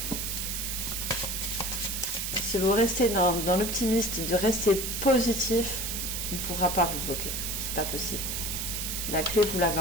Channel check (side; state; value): right; noise; hiss, 3 dB below the sound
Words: Si vous restez dans l'optimiste, de rester positif, on ne pourra pas vous bloquer. C'est pas possible. La clé, vous l'avez